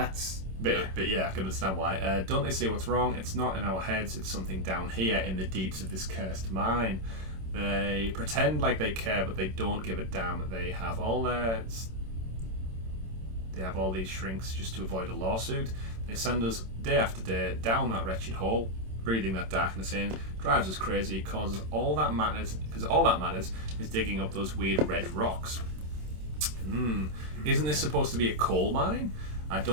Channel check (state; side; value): late; left; 26 ms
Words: But yeah, I can understand why. Don't they see what's wrong? It's not in our heads, it's something down here in the deeps of this cursed mine. They pretend like they care, but they don't give a damn. They have all these shrinks just to avoid a lawsuit. They send us day after day down that wretched hole, breathing that darkness in, drives us crazy, causes all that matters, because all that matters is digging up those weird red rocks. Isn't this supposed to be a coal mine? I